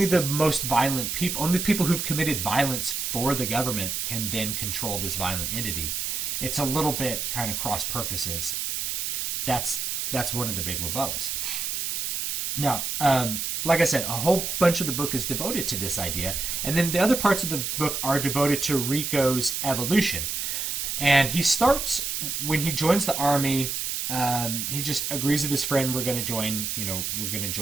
the most violent people, only the people who've committed violence for the government can then control this violent entity. It's a little bit kind of cross purposes. That's one of the big rebuttals. Now, like I said, a whole bunch of the book is devoted to this idea, and then the other parts of the book are devoted to Rico's evolution. And he starts, when he joins the army, he just agrees with his friend, we're going to join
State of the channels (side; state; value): right; noise; hiss, 2 dB below the sound